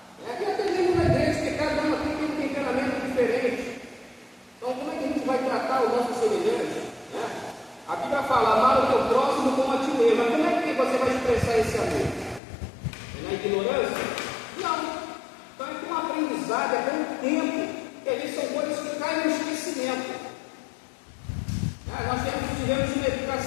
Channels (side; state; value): right; drops out; at 12.4 s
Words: E até mesmo na igreja, que cada uma tem um temperamento diferente. Então, como é que a gente vai tratar o nosso semelhante? A Bíblia fala, amar o teu próximo como a ti mesmo. Mas como é que você vai expressar esse amor? É na ignorância? Não. Então, é com um aprendizado, é com um tempo, que às vezes são coisas que caem no esquecimento. Nós tivemos uma